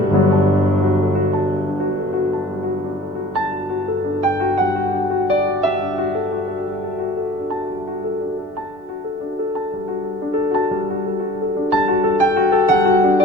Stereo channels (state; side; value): normal; both; correlation 0.46